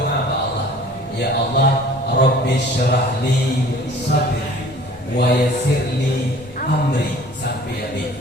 kepada Allah, ya Allah, Rabbi syrah li sadri wa yassir li amri sampai habis.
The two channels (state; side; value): normal; both; correlation 0.49